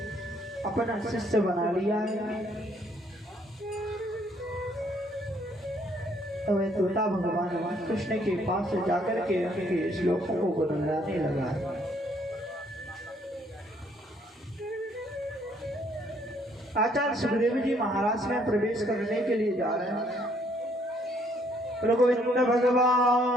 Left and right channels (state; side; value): normal; both; correlation 0.66